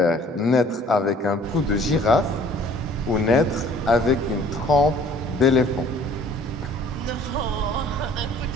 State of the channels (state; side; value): normal; both; correlation 0.53